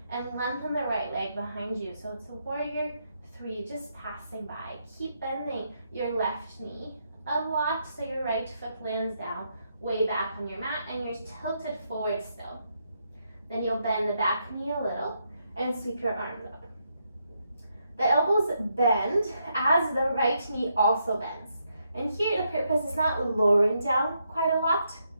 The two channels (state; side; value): inverted; both; correlation -0.79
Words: and lengthen the right leg behind you. So it's a warrior 3, just passing by. Keep bending your left knee a lot so your right foot lands down way back on your mat and you're tilted forward still. Then you'll bend the back knee a little and sweep your arms up. The elbows bend as the right knee also bends. And here the purpose is not lowering down quite a lot.